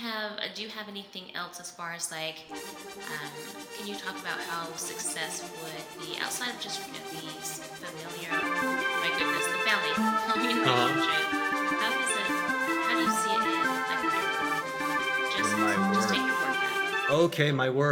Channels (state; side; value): identical; both; correlation 1.00